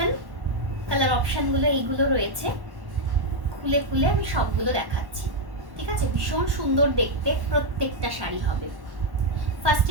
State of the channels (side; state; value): left; late; 1.1 ms